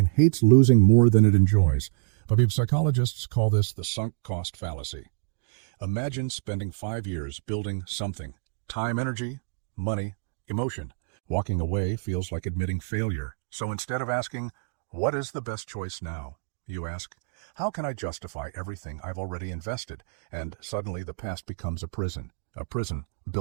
hates losing more than it enjoys. But psychologists call this the sunk cost fallacy. Imagine spending 5 years building something. Time, energy, money, emotion. Walking away feels like admitting failure. So instead of asking, what is the best choice now? You ask, how can I justify everything I've already invested? And suddenly the past becomes a prison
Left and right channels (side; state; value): left; silent; digital silence